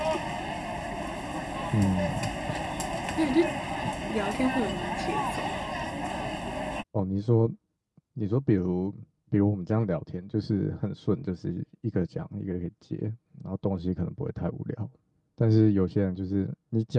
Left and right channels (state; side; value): identical; both; correlation 1.00